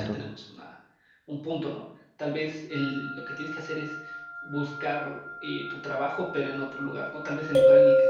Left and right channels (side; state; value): both; identical; correlation 1.00